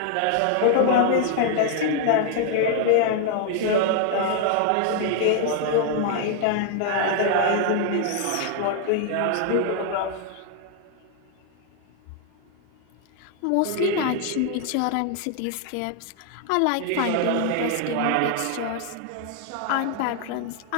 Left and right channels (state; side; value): different; both; correlation 0.00